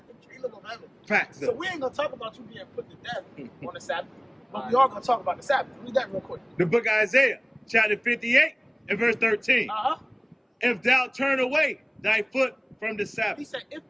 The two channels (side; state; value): both; identical; correlation 1.00